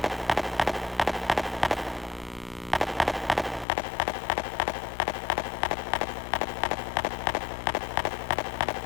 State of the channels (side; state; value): right; drops out; at 3.7 s